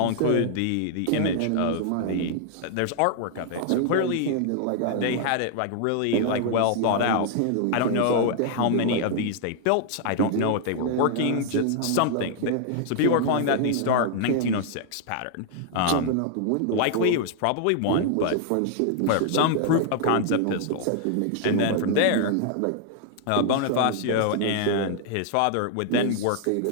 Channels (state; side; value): different; both; correlation 0.00